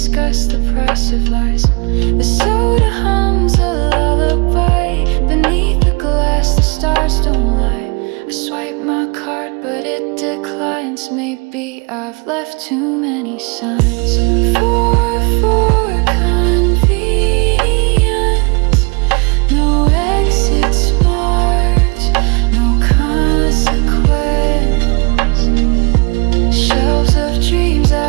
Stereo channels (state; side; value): quieter; left; 30.6 dB